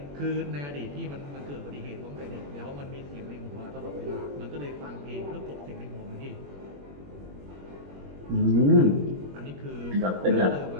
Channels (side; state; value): left; late; 21 ms